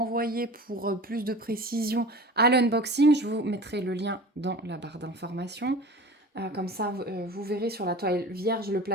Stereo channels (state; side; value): normal; both; correlation 0.37